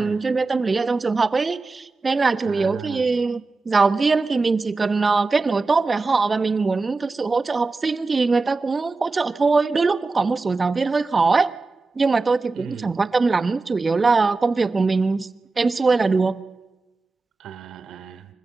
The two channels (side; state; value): left; quieter; 3.8 dB